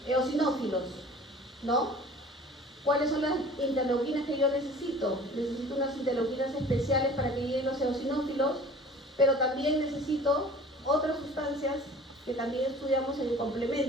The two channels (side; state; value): both; normal; correlation 0.45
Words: eosinófilos, ¿no? ¿Cuáles son las interleuquinas que yo necesito? Necesito unas interleuquinas especiales para que lleguen los eosinófilos, pero también necesito otras sustancias que también estudiamos en el